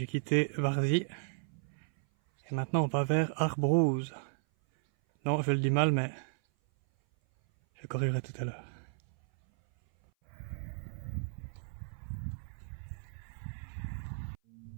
quitté Varzy. Et maintenant on va vers Arbrouz. Non, je le dis mal, mais je corrigerai tout à l'heure.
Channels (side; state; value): left; silent; 55 dB below the other